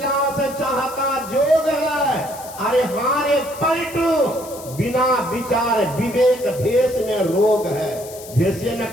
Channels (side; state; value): left; noise; hiss, 16 dB below the sound